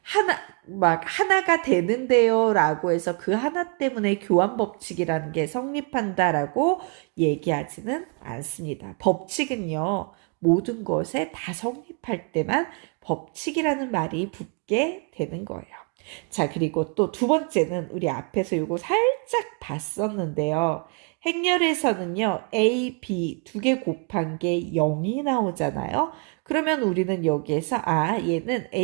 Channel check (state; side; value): quieter; left; 35.4 dB